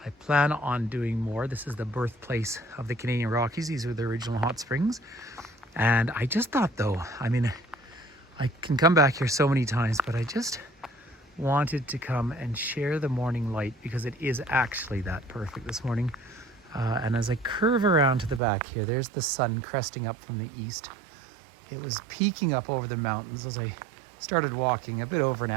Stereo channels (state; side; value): drops out; left; at 18.4 s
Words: I plan on doing more. This is the birthplace of the Canadian Rockies. These are the original hot springs. And I just thought though, I can come back here so many times, but I just wanted to come and share the morning light because it is actually that perfect this morning. And as I curve around to the back here, there's the sun cresting up from the east. It was peeking up over the mountains as I started walking a bit over an